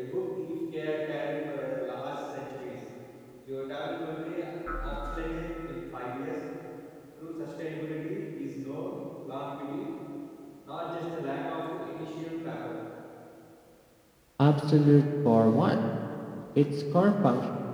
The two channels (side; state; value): both; identical; correlation 1.00